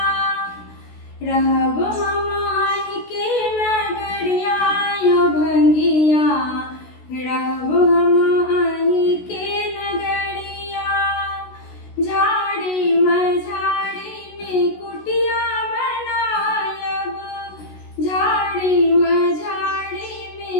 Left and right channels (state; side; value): late; right; 16 ms